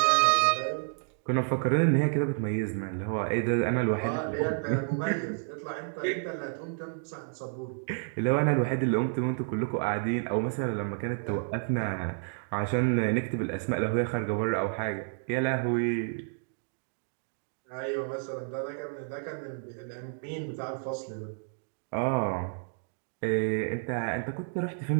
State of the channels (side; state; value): left; silent; digital silence